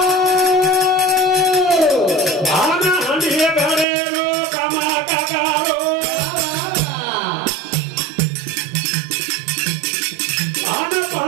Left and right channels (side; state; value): left; drops out; at 3.9 s